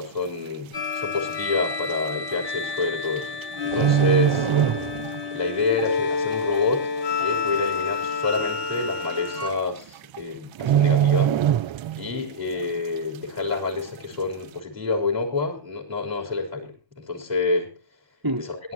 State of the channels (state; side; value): late; left; 1.3 ms